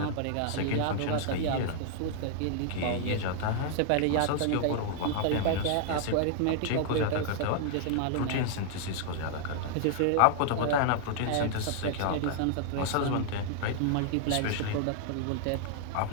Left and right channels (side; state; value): both; different; correlation 0.00